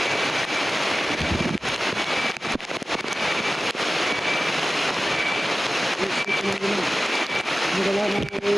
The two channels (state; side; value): normal; both; correlation 0.96